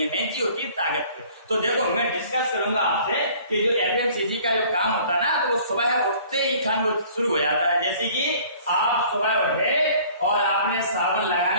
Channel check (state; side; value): inverted; both; correlation -0.52